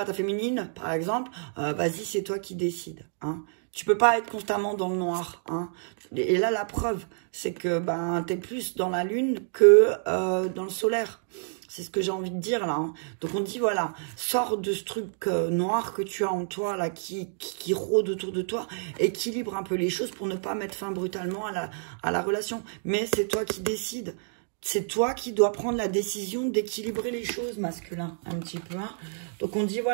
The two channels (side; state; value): left; silent; digital silence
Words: ta féminine, par exemple, vas-y, c'est toi qui décides. Hein. Tu peux pas être constamment dans le noir. Hein. Et là, la preuve, c'est que tu es plus dans la lune que dans le solaire. C'est ce que j'ai envie de dire là. Hein. Donc on dit voilà, sors de ce truc noir que tu as en toi là, qui rôde autour de toi, équilibre un peu les choses pour ne pas mettre fin brutalement à la relation. Mais c'est toi qui décides. C'est toi qui dois prendre la décision d'équilibrer les choses, masculin, un petit peu. Hein. Donc on dit